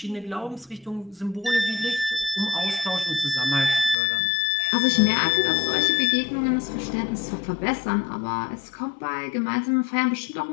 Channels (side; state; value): right; drops out; at 4.0 s